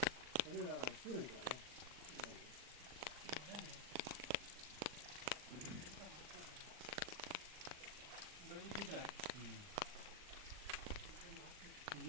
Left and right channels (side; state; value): left; late; 39 ms